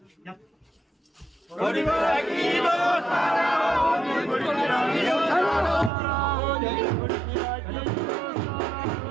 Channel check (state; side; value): drops out; left; at 5.9 s